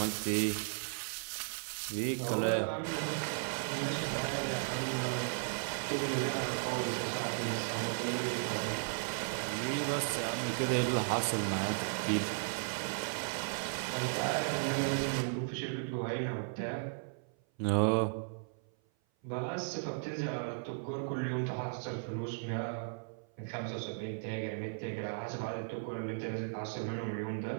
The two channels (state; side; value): silent; left; 54 dB below the other